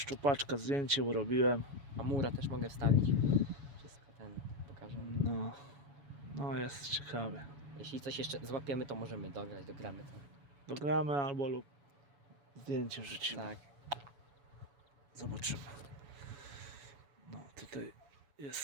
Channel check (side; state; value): left; late; 7.1 ms